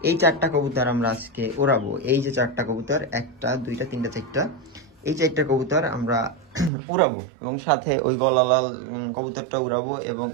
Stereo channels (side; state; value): left; drops out; at 6.7 s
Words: এই চারটা কবুতর আমরা আজকে ওড়াবো। এই যে চারটা কবুতর, একটা দুইটা তিনটা চারটা, এই চারটা কবুতর আমরা উড়াবো এবং সাথে ওই গলালাল কবুতরটা উড়াবো এবং